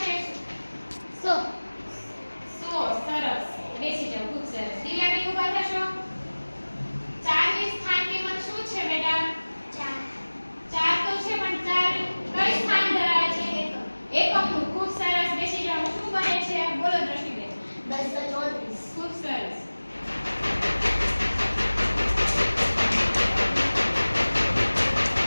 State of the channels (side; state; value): both; inverted; correlation -1.00